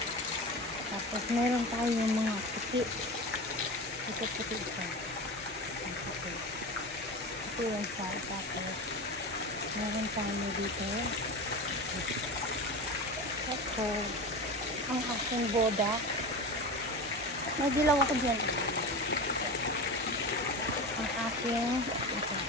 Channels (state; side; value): normal; both; correlation 0.26